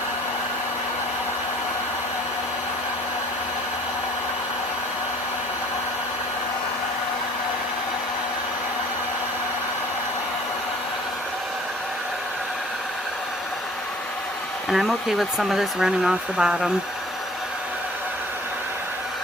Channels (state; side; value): normal; both; correlation 0.51